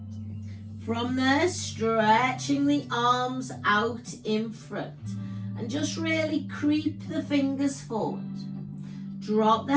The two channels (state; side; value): identical; both; correlation 1.00